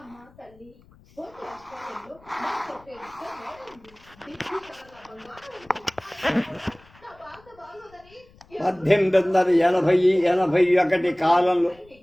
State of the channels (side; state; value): left; noise; rumble, 27 dB below the sound